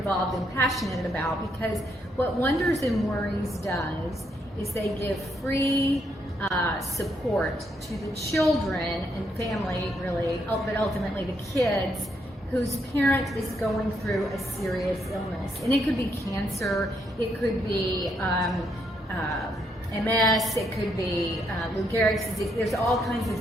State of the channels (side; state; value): both; normal; correlation 0.75